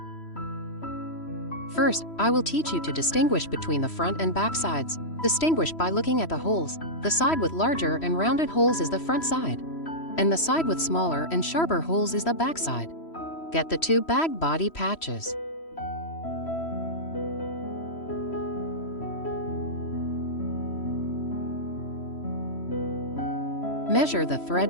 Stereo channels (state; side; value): late; right; 3.1 ms